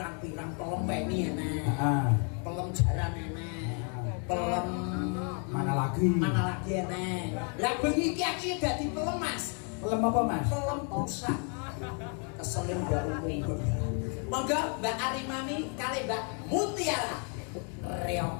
pelem peni enek. Heeh. Pelem jaran enek. Pelem mana lagi enek. Lah bengi iki aku dadi pelem Mas. Pelem apa Mas? Pelem pusat. Keselin Mbak Umum. Monggo Mbak Arimami kali Mbak Mutiara.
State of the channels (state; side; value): quieter; right; 39.8 dB